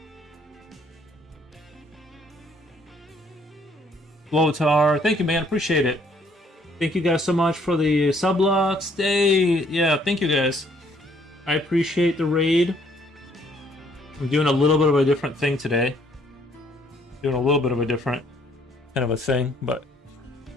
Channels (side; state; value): both; normal; correlation 0.64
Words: Lothar, thank you, man. Appreciate it. Thank you guys so much for the sublocks. Yeah, thank you guys. I appreciate the raid. I'm doing a little bit of a different thing today. Doing a little bit of a different kind of a thing, but.